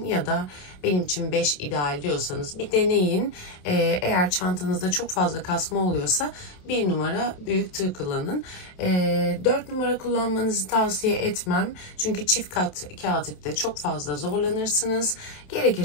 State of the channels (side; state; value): right; late; 27 ms